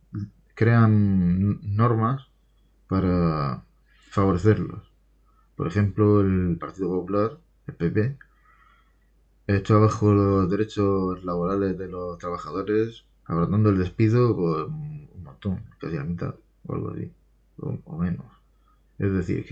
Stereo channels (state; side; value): identical; both; correlation 1.00